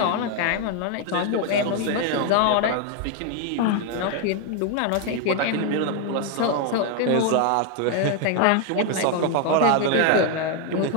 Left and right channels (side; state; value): both; different; correlation 0.01